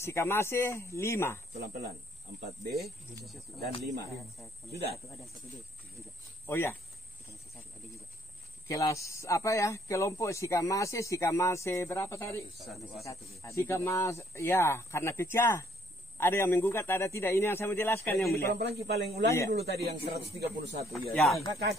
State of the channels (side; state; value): both; normal; correlation 0.65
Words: 5. pelan-pelan. 4B dan 5. Sudah. Oh ya. Kelas apa ya? Kelompok Sikamase berapa tadi? Sikamase, ya, karena pecah. Ada yang menggugat, ada tidak. Ini yang saya mau jelaskan yang mulia. Pelan-pelan paling ulangi Iya. dulu tadi yang 131 ya. Ya.